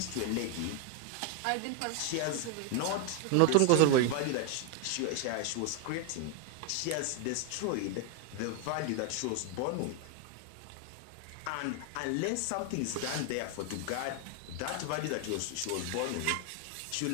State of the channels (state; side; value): different; both; correlation 0.01